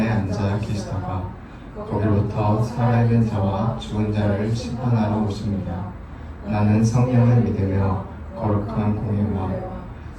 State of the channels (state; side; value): identical; both; correlation 1.00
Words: 앉아 계시다가 거기로부터 살아있는 자와 죽은 자를 심판하러 오십니다. 나는 성령을 믿으며 거룩한 공예와